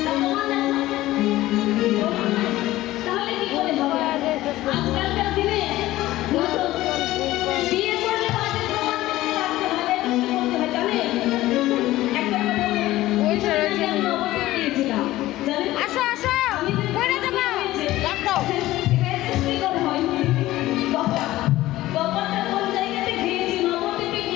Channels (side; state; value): right; quieter; 16.3 dB